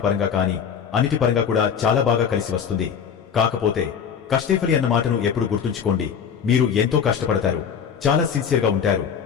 పరంగా కాని, అన్నిటి పరంగా కూడా చాలా బాగా కలిసి వస్తుంది. కాకపోతే కష్టేఫలి అన్న మాటను ఎప్పుడు గుర్తుంచుకోండి. మీరు ఎంతో కష్టపడతారు, చాలా సిన్సియర్గా ఉంటారు.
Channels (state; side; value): quieter; right; 7.3 dB